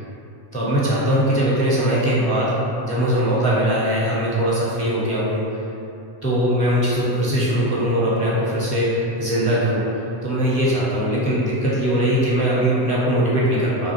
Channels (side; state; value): right; late; 7.9 ms